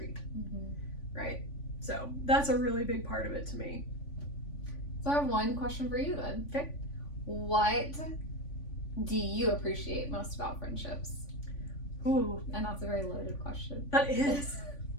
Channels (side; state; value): right; late; 3.5 ms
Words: right? So that's a really big part of it to me. So I have one question for you then. Okay. What do you appreciate most about friendships? Ooh. And that's a very loaded question. That is.